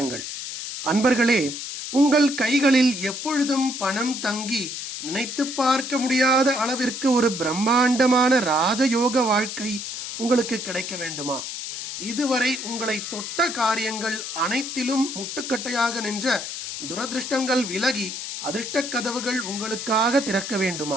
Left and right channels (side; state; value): left; noise; hiss, 7 dB below the sound